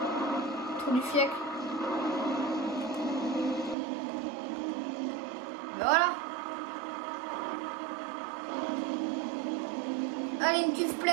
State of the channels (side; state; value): left; drops out; at 3.8 s